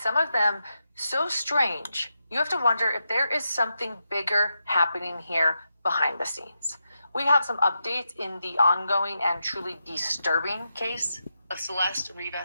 of them so strange. You have to wonder if there is something bigger happening here behind the scenes. We have some updates in the ongoing and truly disturbing case of Celeste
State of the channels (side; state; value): both; inverted; correlation -0.86